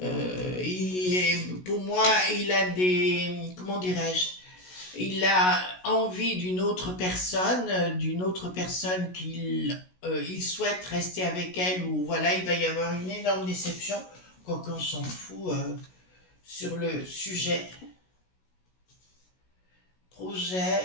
moi, il a des, comment dirais-je, il a envie d'une autre personne qu'il il souhaite rester avec elle, ou voilà, il va y avoir une énorme déception, quoique on s'en fout sur le sujet.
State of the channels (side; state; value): right; late; 16 ms